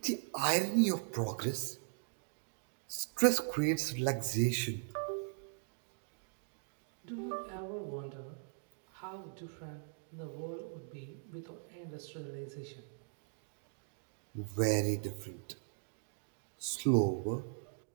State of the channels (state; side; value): silent; left; digital silence